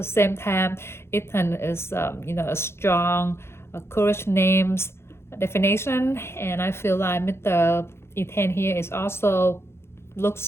same time, Etain is a strong, courage names definition, and I feel like Mr. Etain here is also looks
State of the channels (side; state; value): right; late; 0.12 ms